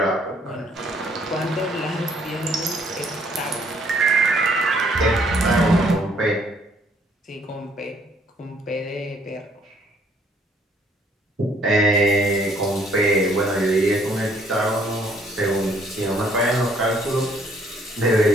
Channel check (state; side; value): normal; both; correlation 0.64